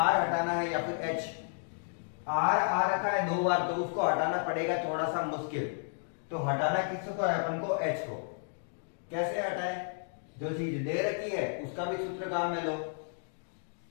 हटाना है या फिर h। r आ रखा है 2 बार, तो उसको हटाना पड़ेगा थोड़ा सा मुश्किल। तो हटाना किसको है अपन को? h को। कैसे हटाए? जो चीज दे रखी है उसका भी सूत्र काम में लो।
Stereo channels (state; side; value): silent; right; digital silence